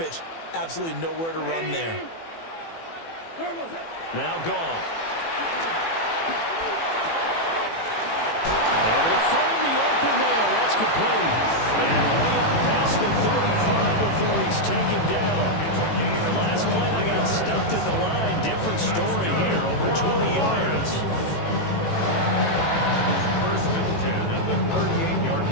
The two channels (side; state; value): right; late; 18 ms